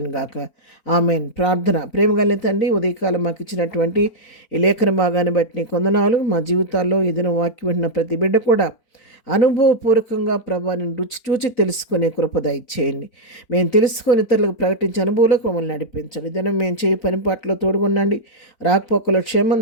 గాక. ఆమెన్. ప్రార్థన. ప్రేమగల తండ్రి, ఉదయకాలం మాకు ఇచ్చినటువంటి ఈ లేఖన భాగాన్ని బట్టి నీ కొందనాలు. మా జీవితాల్లో ఏదైనా వాక్యం వింటున్న ప్రతి బిడ్డ కూడా అనుభవపూర్వకంగా ప్రభాని రుచి చూచి తెలుసుకునే కృప దయచేయండి. మేము తెలుసుకొని ఇతరులకు ప్రకటించే అనుభవాలకు మమ్మల్ని నడిపించండి. దినం మేము చేయి పనిపాట్లో తోడుగుండండి. రాకపోకలో క్షేమం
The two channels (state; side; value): late; right; 4.0 ms